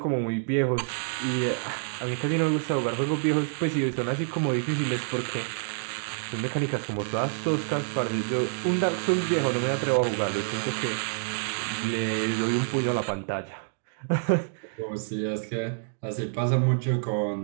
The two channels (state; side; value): silent; left; digital silence